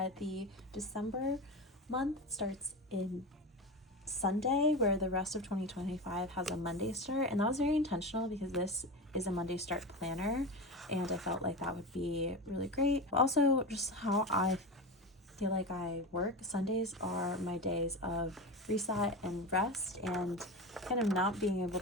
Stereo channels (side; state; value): both; normal; correlation 0.24